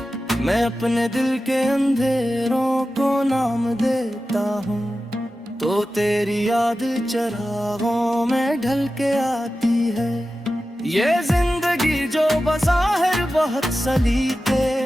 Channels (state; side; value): normal; both; correlation 0.94